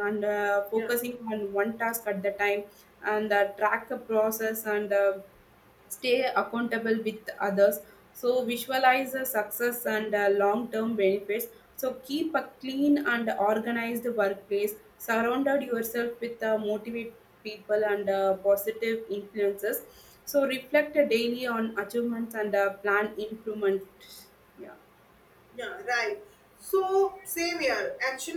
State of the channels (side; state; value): both; identical; correlation 1.00